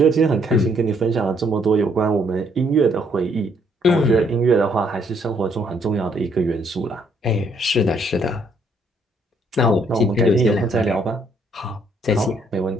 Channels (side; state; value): both; normal; correlation 0.68